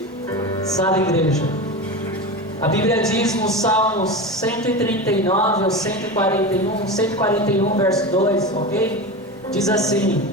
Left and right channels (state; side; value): normal; both; correlation 0.25